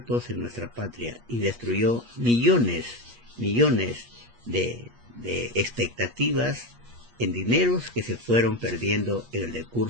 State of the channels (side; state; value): left; late; 8.4 ms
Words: en nuestra patria y destruyó millones de expectativas en dineros que se fueron perdiendo en el